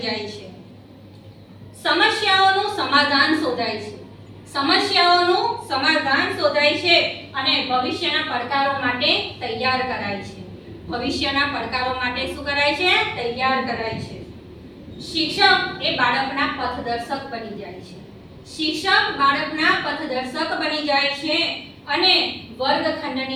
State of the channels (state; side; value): identical; both; correlation 1.00